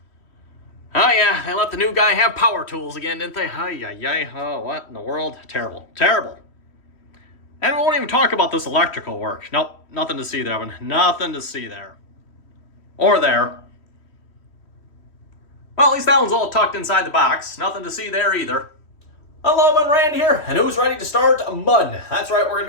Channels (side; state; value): right; late; 3.1 ms